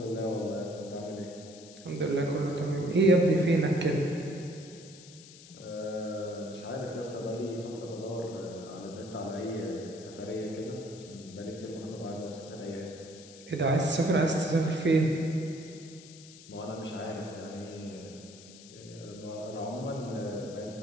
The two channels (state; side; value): noise; left; hiss, 18 dB below the sound